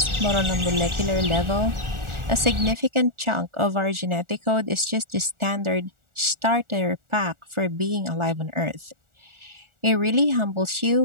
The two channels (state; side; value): late; left; 1.4 ms